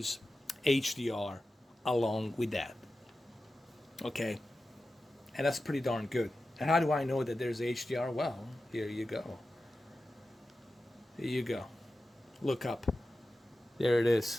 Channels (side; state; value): both; normal; correlation 0.93